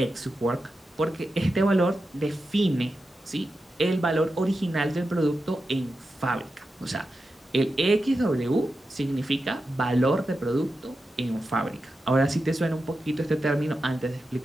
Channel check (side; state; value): both; normal; correlation 0.90